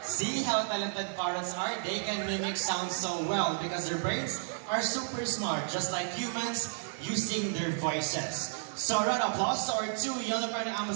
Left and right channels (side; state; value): left; silent; 56 dB below the other